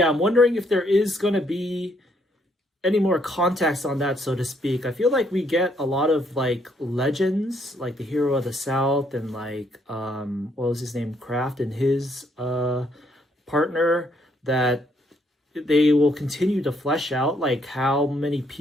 I'm wondering if there is going to be any more context on that, so to speak. I feel like we get a lot of like legends, like the hero of the South and like what was his name, Kraft, and his partner, that they will continue to flesh out like how many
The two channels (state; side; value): normal; both; correlation 0.71